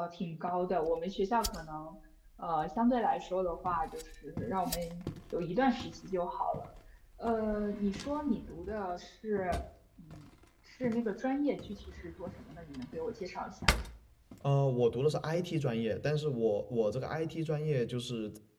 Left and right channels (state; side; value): identical; both; correlation 1.00